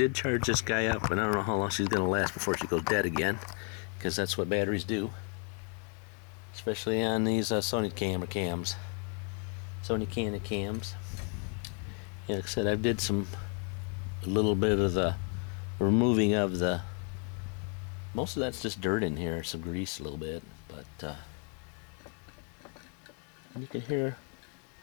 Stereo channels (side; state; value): right; quieter; 39.8 dB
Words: charge this guy up, and I don't know how long she's going to last before she goes dead again, because that's what batteries do. Especially on these Sony cams. Sony Canon cams. Yeah, like I said, I did a little bit of the removing of the, most of that's just dirt in here, some grease a little bit, but you can hear,